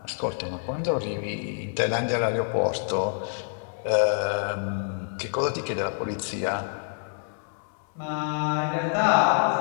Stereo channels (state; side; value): silent; right; digital silence